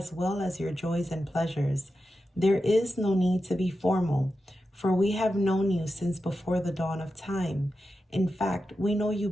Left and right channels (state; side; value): normal; both; correlation 0.90